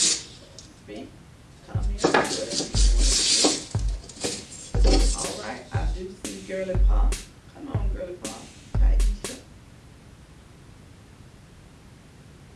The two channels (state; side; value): identical; both; correlation 1.00